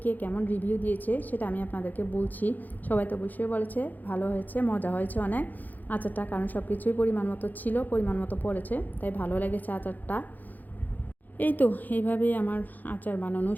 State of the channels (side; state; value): right; late; 0.084 ms